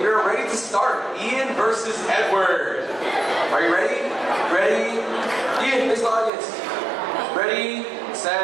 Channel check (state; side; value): drops out; left; at 6.3 s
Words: we're ready to start. Ian versus Edward. Are you ready? Ready? Ian, face the audience. Ready,